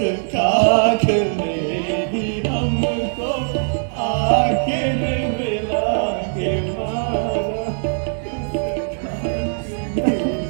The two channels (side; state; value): left; silent; 65 dB below the other